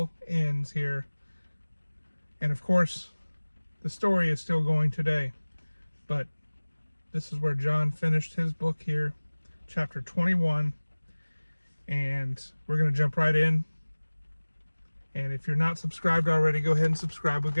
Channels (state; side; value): inverted; both; correlation -1.00